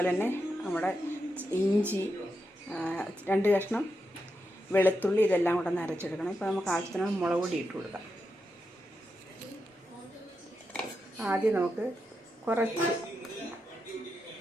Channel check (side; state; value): both; normal; correlation 0.86